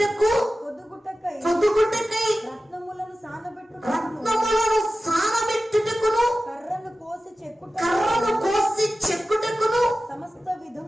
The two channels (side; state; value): both; normal; correlation 0.94